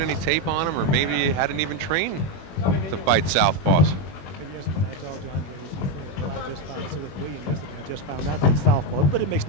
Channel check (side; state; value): right; late; 21 ms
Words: tape on him or maybe hadn't even trained to fight southpaws. Yes, when I talked to Andrade, he said, well, I just found Sylvester Williams yesterday. I just found out that it's southpaw. But it makes